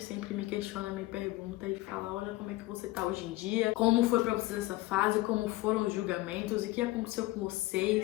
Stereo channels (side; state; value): right; quieter; 19.0 dB